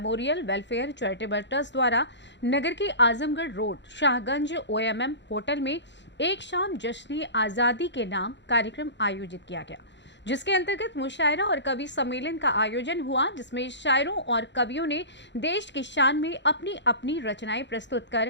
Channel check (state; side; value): late; right; 0.52 ms